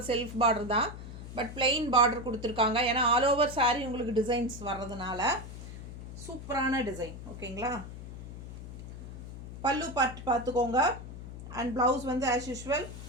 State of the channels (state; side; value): noise; left; hum, 11 dB below the sound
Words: செல்ஃப் பார்டர் தான், பட் பிளெயின் பார்டர் கொடுத்துருக்காங்க. ஏன்னா ஆல் ஓவர் சாரி உங்களுக்கு டிசைன்ஸ் வர்றதுனால சூப்பரான டிசைன். ஓகேங்களா? பல்லு பார்த்துக்கோங்க. அண்ட் ப்ளவுஸ் வந்து ஆஸ் யூஷுவல்